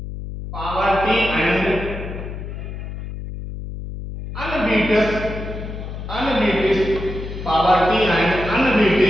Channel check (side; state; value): left; noise; hum, 8 dB below the sound